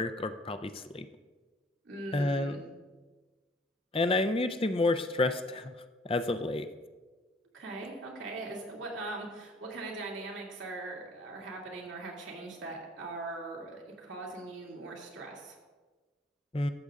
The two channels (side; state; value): both; normal; correlation 0.56